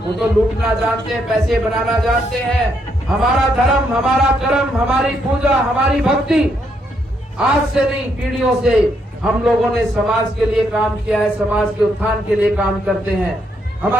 तो लूटना जानते हैं, पैसे बनाना जानते हैं। हमारा धर्म, हमारा कर्म, हमारी पूजा, हमारी भक्ति आज से नहीं, पीढ़ियों से हम लोगों ने समाज के लिए काम किया है, समाज के उत्थान के लिए काम करते हैं।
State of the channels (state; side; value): normal; both; correlation 0.76